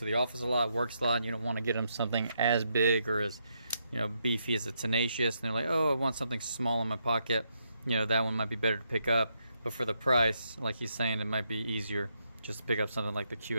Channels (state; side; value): inverted; both; correlation -0.79